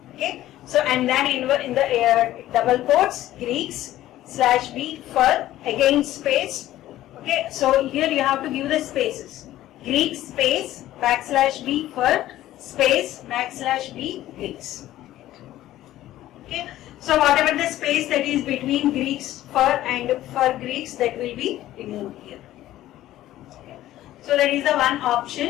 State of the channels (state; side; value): quieter; right; 14.3 dB